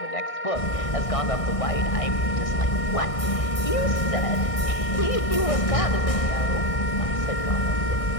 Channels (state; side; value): late; right; 1.6 ms